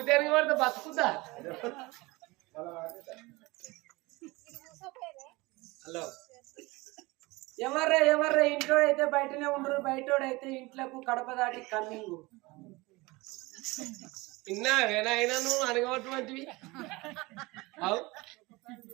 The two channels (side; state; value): left; quieter; 22.9 dB